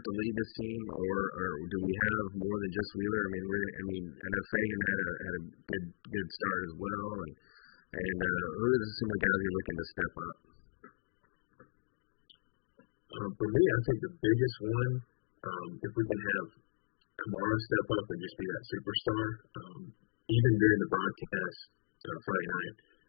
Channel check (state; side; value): silent; right; digital silence